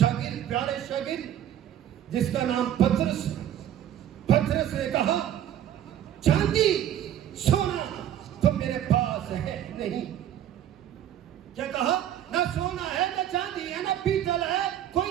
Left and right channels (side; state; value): left; quieter; 10.9 dB